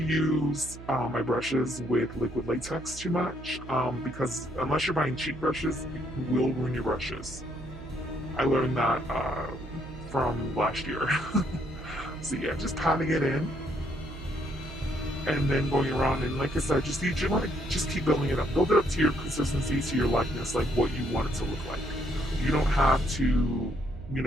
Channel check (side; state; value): right; noise; hum, 14 dB below the sound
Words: use my brushes with liquid latex too much, because unless you're buying cheap brushes, it will ruin your brushes. I learned that from last year. So yeah, just patting it in, and then going around, and like I said, you want to just keep building it up. Build it up to your consistency, to your likeness, like what you want it to look like. You don't have to,